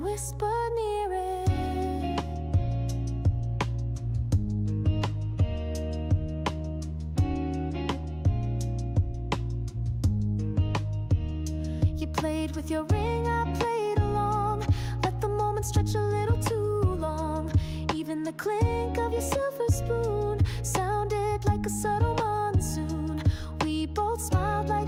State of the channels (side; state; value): both; identical; correlation 1.00